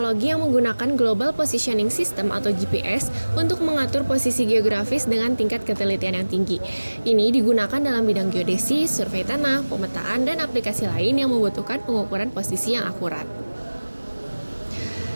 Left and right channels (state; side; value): inverted; both; correlation -1.00